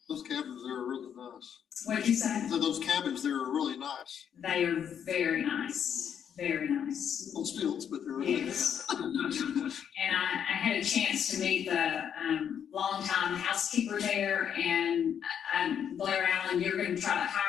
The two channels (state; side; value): quieter; right; 8.4 dB